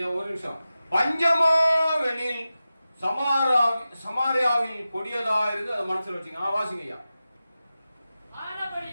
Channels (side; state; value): both; inverted; correlation -0.94